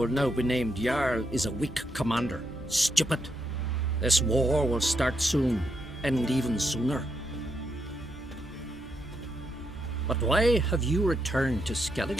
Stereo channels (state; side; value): normal; both; correlation 0.80